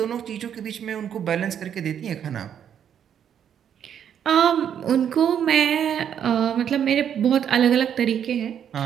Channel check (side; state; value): left; quieter; 8.9 dB